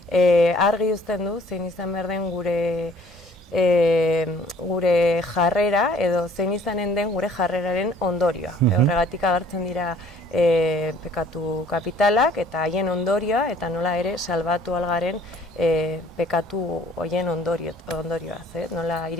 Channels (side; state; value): both; normal; correlation 0.56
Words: argi uzten du, zein izan behar den gure jarrera, edo zein izanen den gure jarreraren ondorioa. Horregatik agertzen dira pekatu kapitalak eta haien ondorioa, eta nola ere salbatu algaren pekatu horien ondorioaz, nola